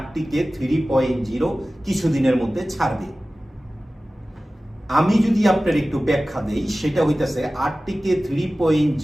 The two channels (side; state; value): both; normal; correlation 0.96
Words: 3.0 কিছুদিনের মধ্যে ছাড়বে। আমি যদি আপনার একটু ব্যাখ্যা দেই, সেটা হইতেছে আরটিকে